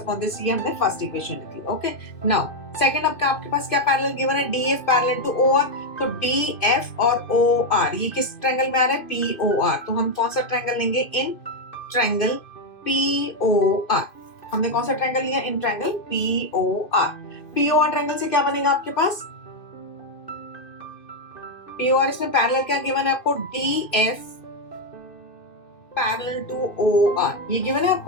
this, ये हमने फर्स्ट इक्वेशन लिखी। ओके, नाउ सेकंड आपके पास क्या पैरेलल गिवन है, डीएफ पैरेलल टू ओआर, तो डीएफ और ओआर ये किस ट्रायंगल में आ रहा है, पीओआर, तो हम कौन सा ट्रायंगल लेंगे, इन ट्रायंगल पीओआर। हमने कौन सा ट्रायंगल लिया, इन ट्रायंगल पीओआर। पीओआर ट्रायंगल से क्या बनेगा आपके पास, पीओआर, इसमें पैरेलल क्या गिवन है आपको, डीएफ पैरेलल टू ओआर, ये गिवन है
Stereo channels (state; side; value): late; right; 2.6 ms